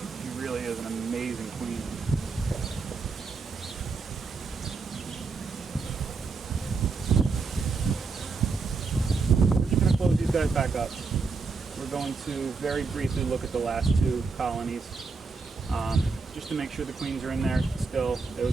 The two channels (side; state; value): left; quieter; 4.5 dB